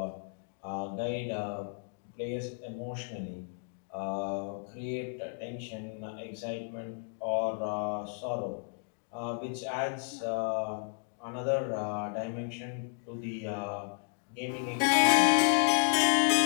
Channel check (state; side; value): silent; right; 56 dB below the other